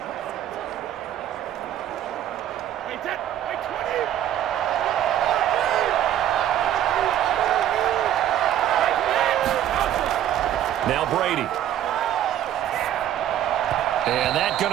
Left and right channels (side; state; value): left; quieter; 11.4 dB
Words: Now Brady. And that's